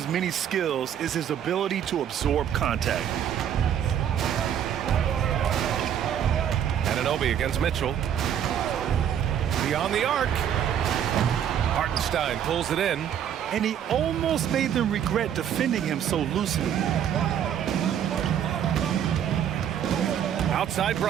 many skills is his ability to absorb contact. Anunoby against Mitchell. Beyond the arc. Hartenstein pulls it in. And he almost made them regret defending him so loosely. Outside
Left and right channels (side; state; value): left; quieter; 9.4 dB